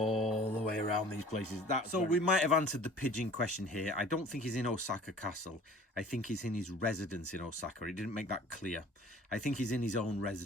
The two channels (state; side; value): normal; both; correlation 0.48